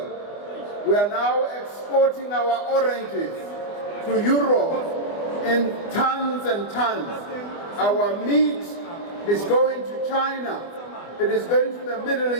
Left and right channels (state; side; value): late; right; 24 ms